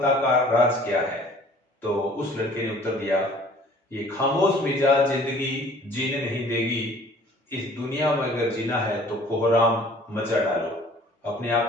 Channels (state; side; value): normal; both; correlation 0.51